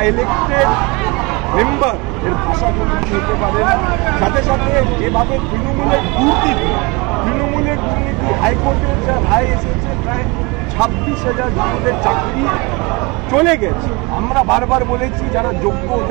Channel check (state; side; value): quieter; left; 27.0 dB